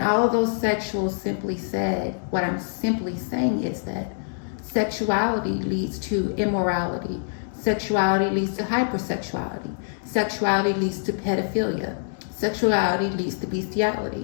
all of those sexuals simply said, what I'm simply saying is that sexuality leads to immorality. Sexuality leads to hypersexuality. Sexuality leads to pedophilia. Sexuality leads to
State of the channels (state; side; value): silent; right; digital silence